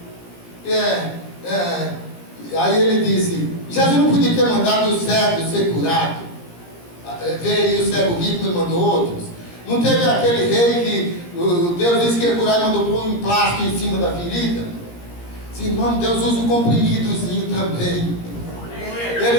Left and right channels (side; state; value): right; late; 17 ms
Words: Aí ele disse: Jesus não podia ter mandado o cego ser curado. Veio o cego rico e mandou outros. Não teve aquele rei que Deus disse que ia curar e mandou pôr um plástico em cima da ferida? Sim, irmão, Deus usa um comprimidozinho também.